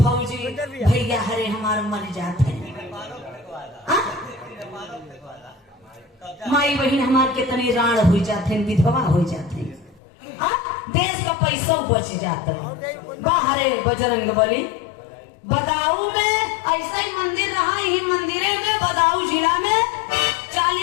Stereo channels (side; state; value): right; drops out; at 10.0 s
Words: भैया हरे हमारे मर जाते। माई बहन हमारे कितने राण हो जाते, विधवा हो जाते, देश का पैसा बच जाता है। बाहरे बजरंग बली बदाऊ में ऐसा ही मंदिर रहा, यही मंदिरे में बदाऊ जिला में